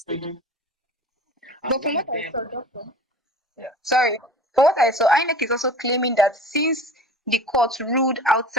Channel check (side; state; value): both; normal; correlation 0.41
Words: taken. But from what I saw, Doctor. Yeah. Sorry. From what I saw, INEC is also claiming that since the court ruled